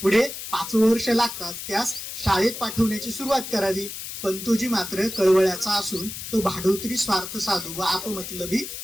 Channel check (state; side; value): noise; left; hiss, 8 dB below the sound